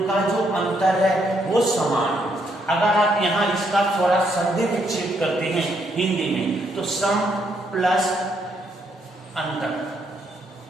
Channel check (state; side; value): normal; both; correlation 0.74